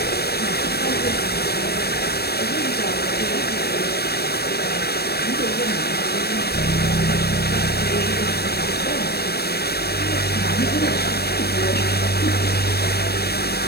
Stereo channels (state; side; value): late; right; 0.46 ms